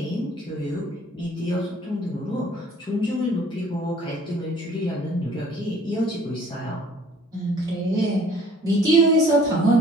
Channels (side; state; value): both; normal; correlation 0.54